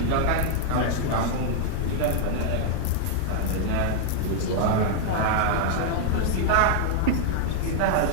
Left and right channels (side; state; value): both; different; correlation 0.00